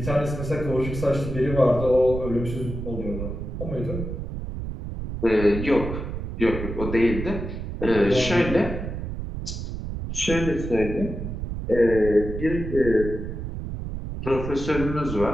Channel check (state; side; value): noise; right; rumble, 6 dB below the sound